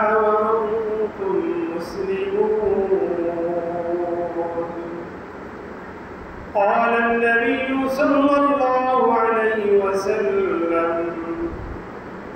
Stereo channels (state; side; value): identical; both; correlation 1.00